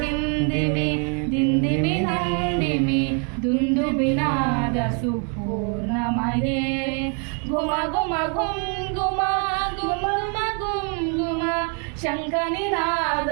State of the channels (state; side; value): quieter; left; 39.1 dB